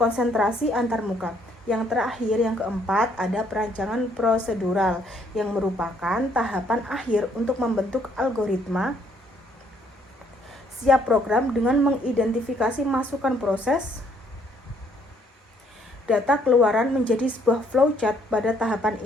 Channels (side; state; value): both; normal; correlation 0.67